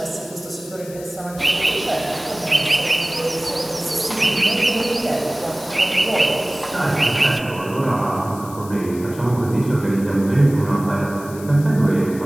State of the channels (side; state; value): left; noise; hiss, 18 dB below the sound